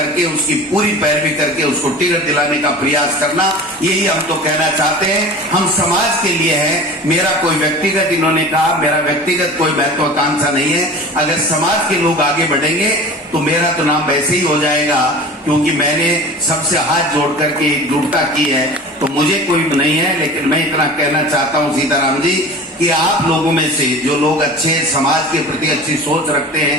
उसकी पूरी पैरवी करके उसको टिकट दिलाने का प्रयास करना, यही हम तो कहना चाहते हैं। हम समाज के लिए हैं, मेरा कोई व्यक्तिगत, इन्होंने कहा मेरा व्यक्तिगत कोई महत्वाकांक्षा नहीं है। अगर समाज के लोग आगे बढ़ेंगे तो मेरा तो नाम वैसे ही हो जाएगा, क्योंकि मैंने सबसे हाथ जोड़ करके एकजुटता की है, तो मुझे कोई नहीं है। लेकिन मैं इतना कहना चाहता हूं सीताराम जी कि आप लोगों में से जो लोग अच्छे, समाज के प्रति अच्छी सोच रखते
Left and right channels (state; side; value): normal; both; correlation 0.38